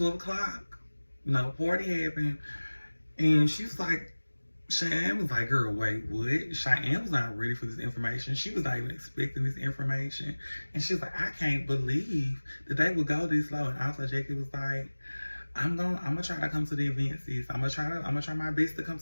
o'clock, party happened. And she was like, Cheyenne was like, girl, wait, what? Cheyenne was not ready for this information. She was not even expecting this information. And she was like, I can't believe that they would go this low. And also Jackie was like, I'm gonna try to come to the event, sis. I'm gonna try my best to come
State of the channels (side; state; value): both; inverted; correlation -1.00